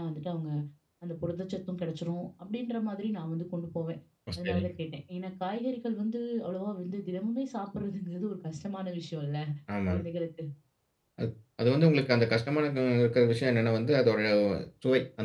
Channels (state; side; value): identical; both; correlation 1.00